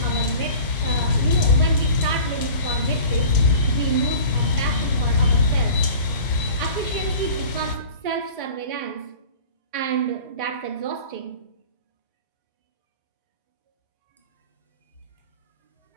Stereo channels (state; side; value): inverted; both; correlation -0.41